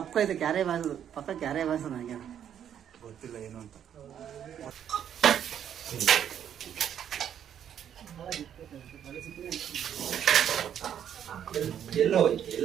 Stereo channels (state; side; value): quieter; left; 9.4 dB